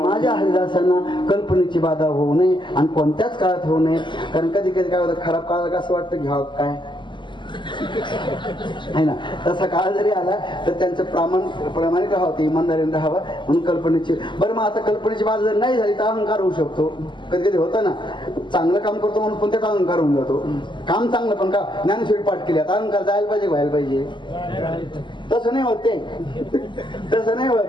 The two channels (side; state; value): right; late; 0.23 ms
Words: हरिदासांना कल्पनेची बाधा होऊ नये, आणि कोणत्याच काळात होऊ नये. कारण कधी कधी काय होतं, खराब काळात असं वाटतं घ्यावं काय, आहे ना. तसा काळ जरी आला तर त्यांचं प्रामाणिक राहावं, इमानदारीने राहावं म्हणून कल्पनेची. बरं मग आता कल्पनेची बाजू जर नाही झाली तर अहंकार होऊ शकतो. कधी कधी होतं ना, चांगलं काम करतो म्हणून पण त्याचा अहंकार होऊन जातो. काम चांगलं पण का ज्ञानेश्वरी पाठ केली आता अहंकार जायला पाहिजे, व्हायला पाहिजे. तसं नाही होत ते, तसं नाही